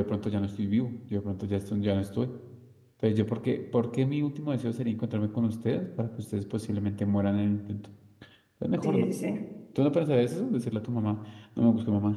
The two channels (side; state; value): both; identical; correlation 1.00